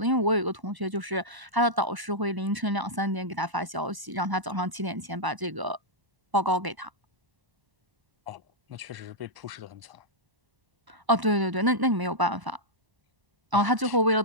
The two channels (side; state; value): left; late; 1.0 ms